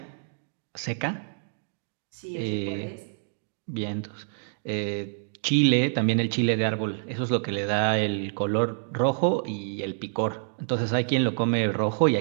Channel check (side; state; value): left; silent; digital silence